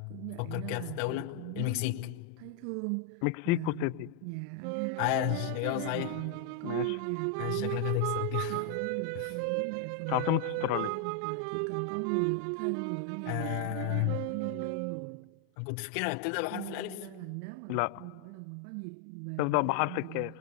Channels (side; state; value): both; different; correlation 0.00